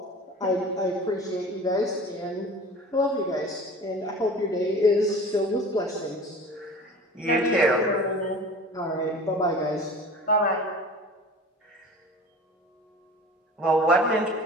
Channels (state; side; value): normal; both; correlation 0.40